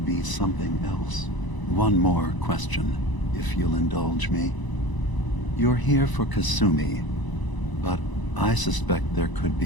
be something else. One more question, if you'll indulge me. You're here for Kasumi, but I suspect there could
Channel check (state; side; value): late; right; 1.0 ms